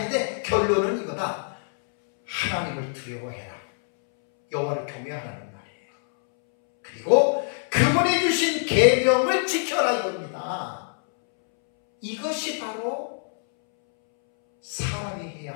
결론은 이거다. 하나님을 두려워해라. 여호와를 경외하라는 말이에요. 그리고 그분이 주신 계명을 지켜라 이겁니다. 이것이 바로 사람이 해야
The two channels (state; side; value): silent; right; 62 dB below the other